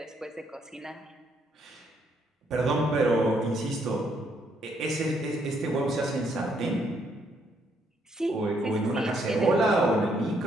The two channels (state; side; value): normal; both; correlation 0.72